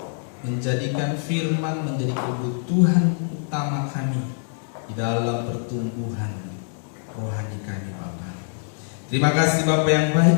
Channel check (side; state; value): right; silent; digital silence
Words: menjadikan firman menjadi kebutuhan utama kami di dalam pertumbuhan rohani kami, Bapa. Terima kasih Bapa yang